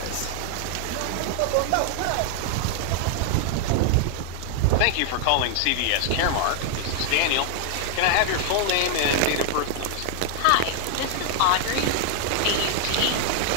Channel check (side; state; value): both; different; correlation 0.00